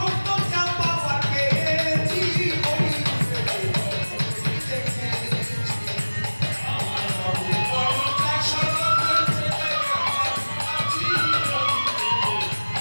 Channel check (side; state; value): both; inverted; correlation -1.00